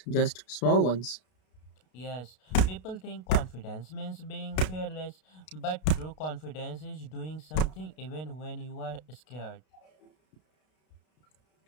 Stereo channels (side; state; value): right; late; 32 ms